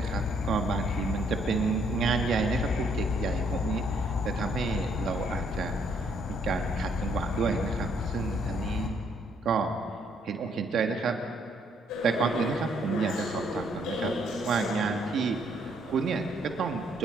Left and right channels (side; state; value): both; normal; correlation 0.69